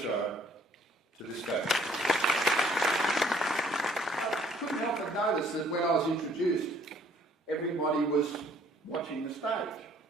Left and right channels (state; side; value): normal; both; correlation 0.60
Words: to the stage. I couldn't help but notice that when I was introduced, everybody was watching the stage.